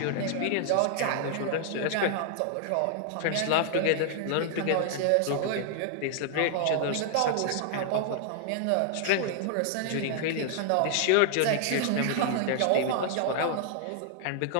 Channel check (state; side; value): different; both; correlation 0.00